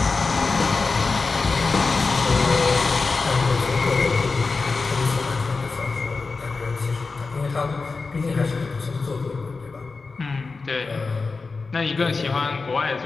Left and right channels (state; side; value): quieter; right; 4.2 dB